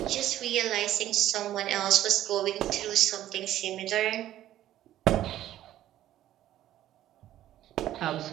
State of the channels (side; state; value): left; quieter; 13.0 dB